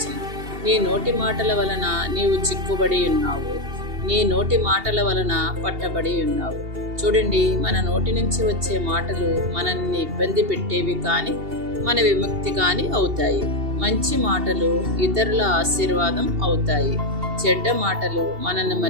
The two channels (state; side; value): late; left; 2.7 ms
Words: నీ నోటి మాటల వలన నీవు చిక్కుబడి ఉన్నావు, నీ నోటి మాటల వలన పట్టబడి ఉన్నావు. చూడండి, మన నోటి నుంచి వచ్చే మాటలు మనల్ని ఇబ్బంది పెట్టేవి కానీ మన విముక్తి కానీ అవుతాయి. మంచి మాటలు ఇతరుల ఆశీర్వాదం అవుతాయి. చెడ్డ మాటలు మనల్ని